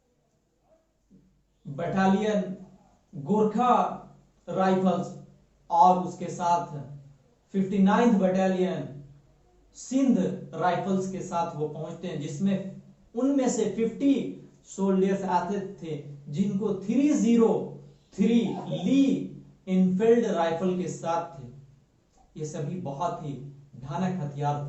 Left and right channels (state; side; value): identical; both; correlation 1.00